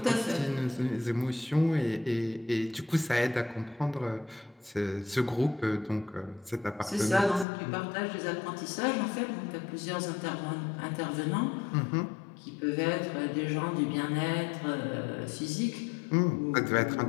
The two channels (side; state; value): right; drops out; at 7.5 s